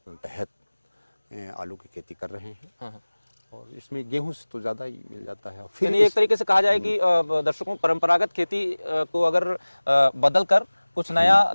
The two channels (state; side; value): inverted; both; correlation -1.00